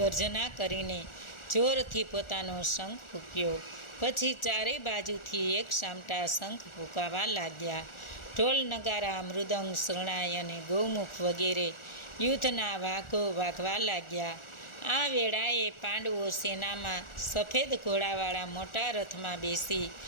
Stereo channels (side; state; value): right; late; 1.4 ms